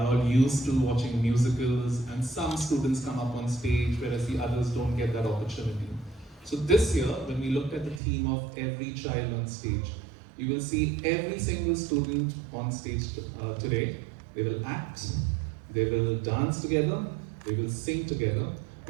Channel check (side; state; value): left; drops out; at 8.0 s